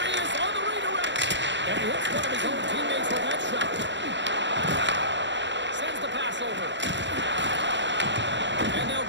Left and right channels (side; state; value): left; late; 0.53 ms